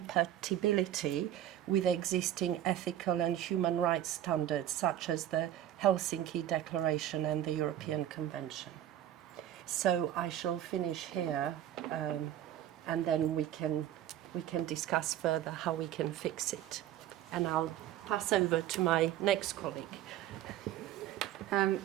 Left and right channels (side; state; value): left; quieter; 11.9 dB